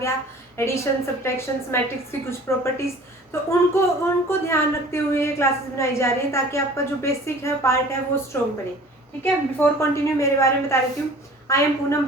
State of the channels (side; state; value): both; normal; correlation 0.46